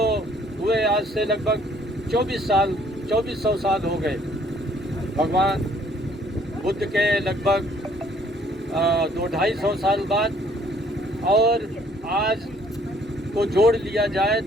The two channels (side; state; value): both; normal; correlation 0.62